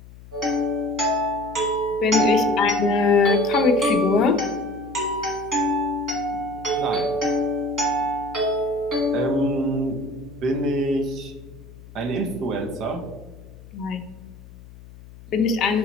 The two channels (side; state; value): left; noise; hum, 19 dB below the sound